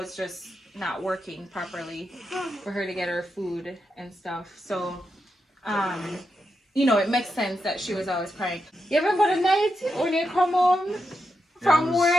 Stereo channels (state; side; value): normal; both; correlation 0.86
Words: just not working properly for her to get her food and stuff. So you know, it makes sense that she was always crying. You ever go to night when you come home from